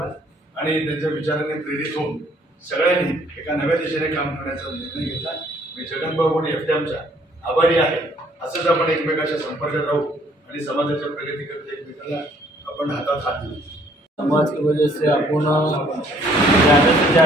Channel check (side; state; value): both; normal; correlation 0.62